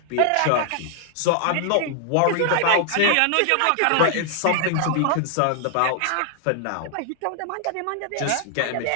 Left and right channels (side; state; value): both; different; correlation 0.00